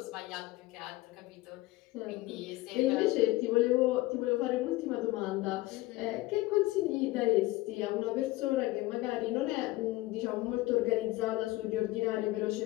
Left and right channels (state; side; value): quieter; right; 18.9 dB